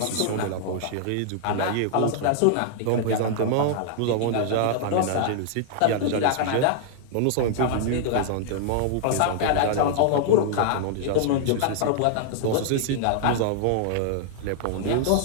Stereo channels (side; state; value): both; different; correlation -0.01